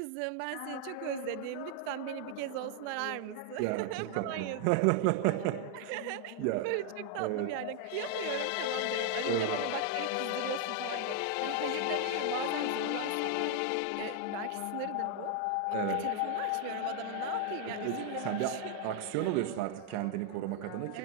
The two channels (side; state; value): both; different; correlation 0.00